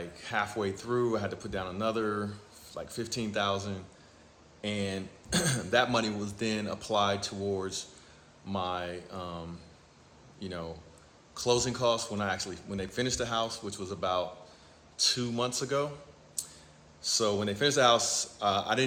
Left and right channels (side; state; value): both; identical; correlation 1.00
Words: halfway through. I had to put down another like $15,000, and that money was then applied towards my closing costs when they finished the house, which was about 2 months ago. So when they finished the house, I